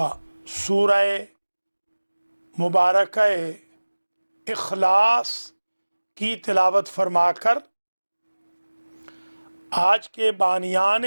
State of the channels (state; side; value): inverted; both; correlation -1.00